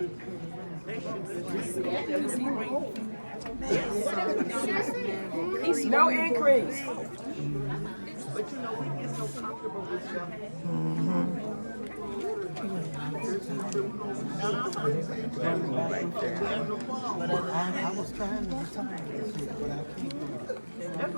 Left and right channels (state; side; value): inverted; both; correlation -1.00